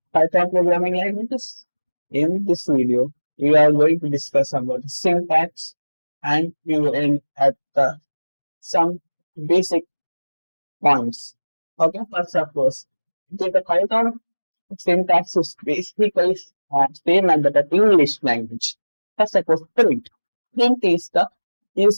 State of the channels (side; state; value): both; inverted; correlation -1.00